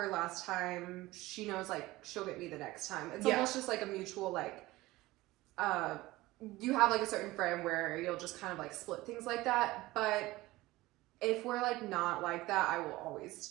last time, she knows like she'll get me the next time. It's almost just like a mutual like, you have like a certain friend where you'll just kind of like split things like that. But if we're like not like that, I will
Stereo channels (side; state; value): left; quieter; 18.8 dB